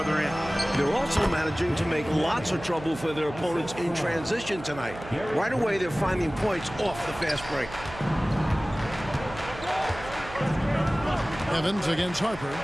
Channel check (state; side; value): noise; right; hum, 14 dB below the sound